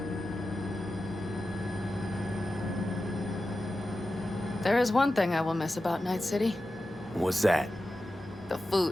There is one thing I will miss about Night City. What's that? The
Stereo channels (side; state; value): both; normal; correlation 0.93